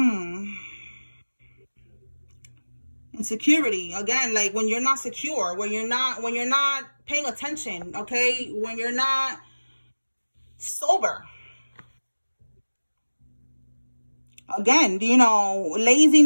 Insecurity. Again, like when you're not secure, when you're not paying attention, okay? When you're not sober. Again, you know,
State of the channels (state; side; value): inverted; both; correlation -1.00